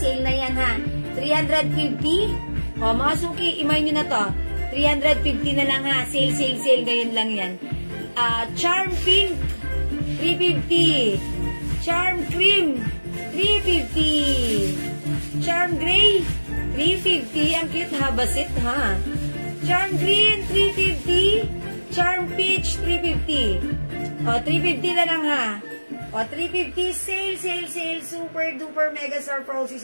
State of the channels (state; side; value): inverted; both; correlation -1.00